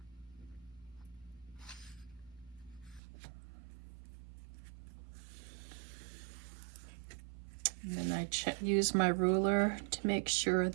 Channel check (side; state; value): left; drops out; at 3.0 s